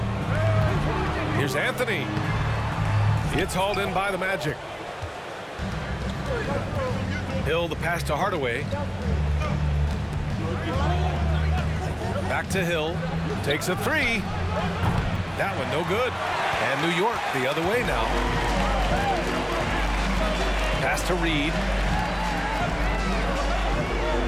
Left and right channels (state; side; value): identical; both; correlation 1.00